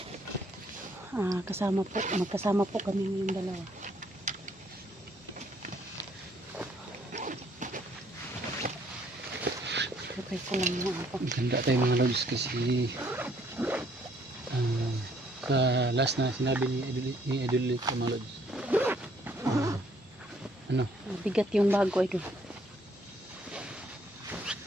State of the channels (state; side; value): normal; both; correlation 0.65